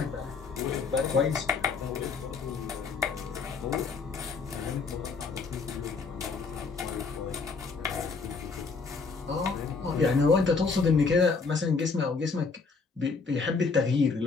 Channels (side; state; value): right; quieter; 4.6 dB